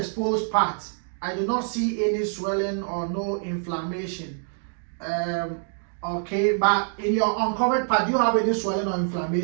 part, I do not see any swelling or no inflammation. Okay, but in your uncovered part, do you have any swelling or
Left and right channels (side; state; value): left; silent; digital silence